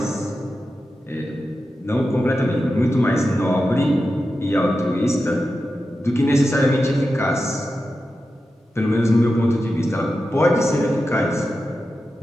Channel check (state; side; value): normal; both; correlation 0.91